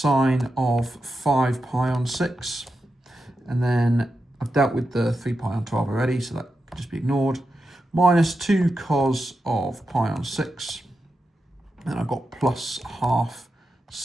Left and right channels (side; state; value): both; normal; correlation 0.89